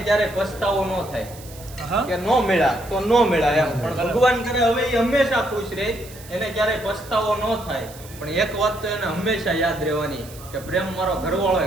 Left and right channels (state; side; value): noise; right; hiss, 19 dB below the sound